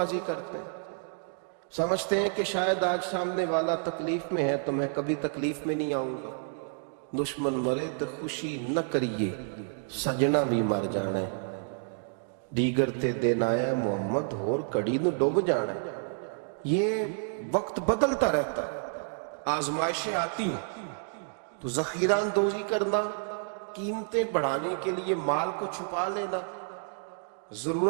کرتے ہیں، سمجھتے ہیں کہ شاید آج سامنے والا تکلیف میں ہے تو میں کبھی تکلیف میں نہیں آؤں گا۔ دشمن مرے تو خوشی نہ کریے، سجنا بھی مر جانا ہے، دیگر تے دن آیا محمد ہور کڑی نو ڈوب جانا ہے۔ یہ وقت بدلتا رہتا ہے، آزمائشیں آتی ہیں، تو ذخیرہ اندوزی کرنا، قیمتیں بڑھانے کے لیے مال کو چھپا لینا،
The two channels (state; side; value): silent; left; digital silence